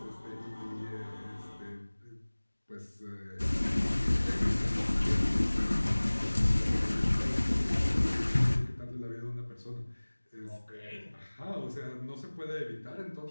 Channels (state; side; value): inverted; both; correlation -1.00